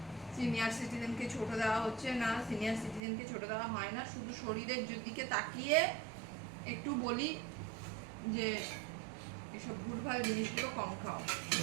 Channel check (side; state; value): left; drops out; at 3.0 s